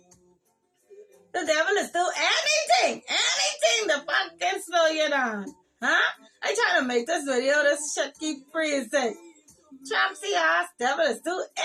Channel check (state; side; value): identical; both; correlation 1.00